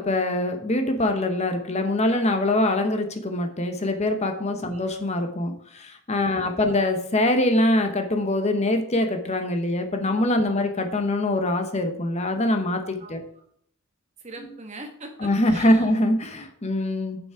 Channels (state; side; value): normal; both; correlation 0.47